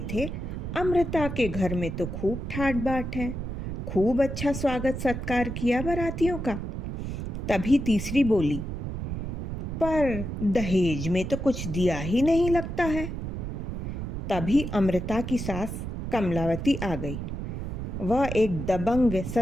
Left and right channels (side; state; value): right; noise; rumble, 5 dB below the sound